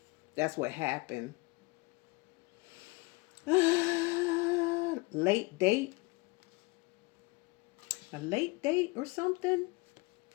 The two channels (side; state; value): right; quieter; 25.3 dB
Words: That's what happened. Late date. A late date or something?